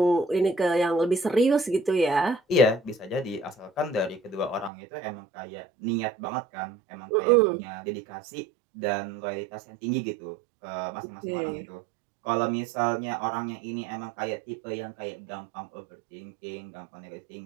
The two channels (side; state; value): left; drops out; at 4.7 s